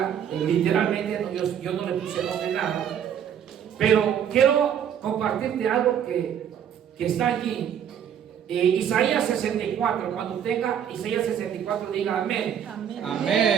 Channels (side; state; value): left; quieter; 8.9 dB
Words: literalmente, yo no le puse nombre nada, pero quiero compartirte algo que está allí. Isaías 64, cuando tenga Isaías 64, diga amén. Amén.